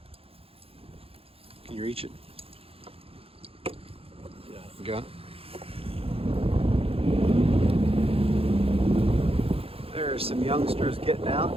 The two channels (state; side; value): late; left; 0.28 ms